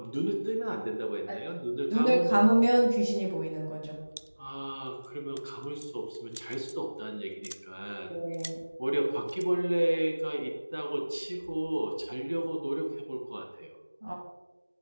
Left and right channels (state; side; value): inverted; both; correlation -1.00